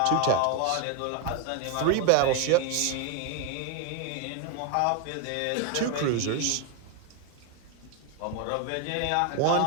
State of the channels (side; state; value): both; different; correlation 0.01